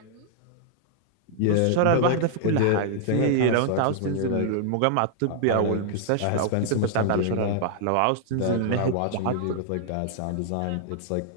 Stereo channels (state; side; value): different; both; correlation -0.01